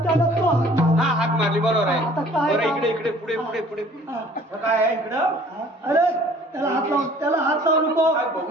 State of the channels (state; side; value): normal; both; correlation 0.53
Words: त्याला तो हा हाक मारली बरोबर आहे. आता काय बरं काम? इकडे इकडे पुढे पुढे पुढे आता काय आहे इकडं? अरे त्याला हात लावू नको. काय